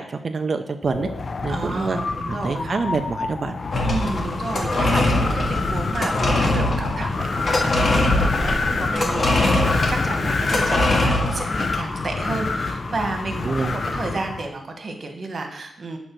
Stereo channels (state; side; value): normal; both; correlation 0.84